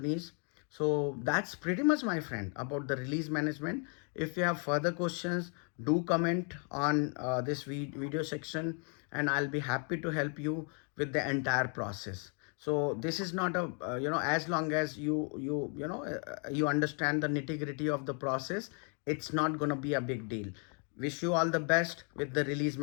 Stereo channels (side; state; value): right; quieter; 39.5 dB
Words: So that's pretty much, my friend, about the release management. If you have further questions, do comment on this video section, and I'll be happy to help you with the entire process. So this is not a as long as you understand the nitty-gritty of the process, it's not going to be a big deal. Wish you all the best with the release